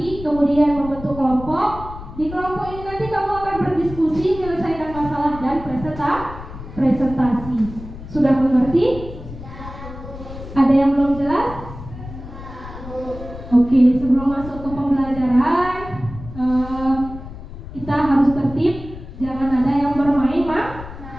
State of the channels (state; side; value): noise; left; rumble, 13 dB below the sound